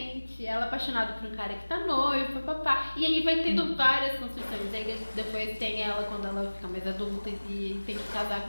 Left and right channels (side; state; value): both; inverted; correlation -1.00